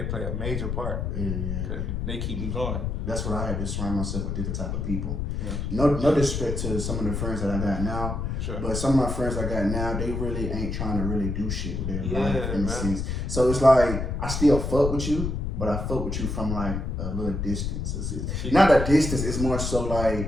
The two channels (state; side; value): noise; left; rumble, 2 dB below the sound